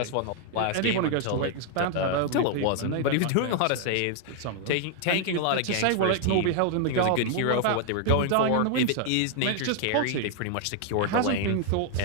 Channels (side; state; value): both; different; correlation 0.00